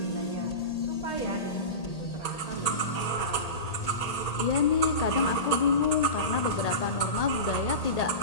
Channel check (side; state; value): right; late; 1.8 ms